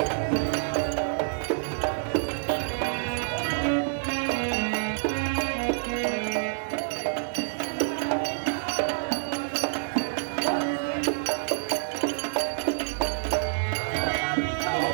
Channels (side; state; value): left; silent; digital silence